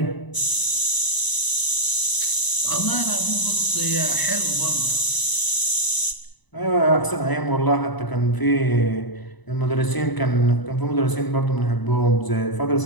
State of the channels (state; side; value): late; right; 1.0 ms